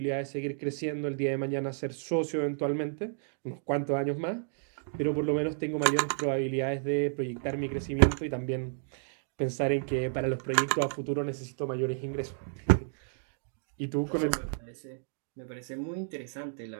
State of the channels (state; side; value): silent; left; digital silence